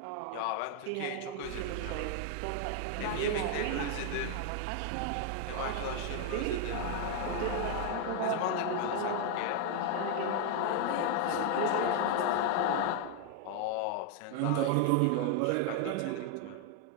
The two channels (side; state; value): both; different; correlation 0.01